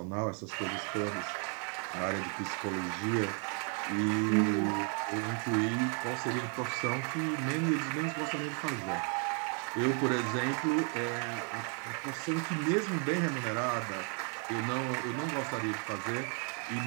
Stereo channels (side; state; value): left; quieter; 40.0 dB